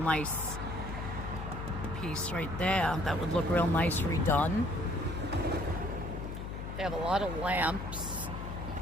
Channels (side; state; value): left; noise; hum, 6 dB below the sound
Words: piece right there. That would look real nice redone. They have a lot of lamps.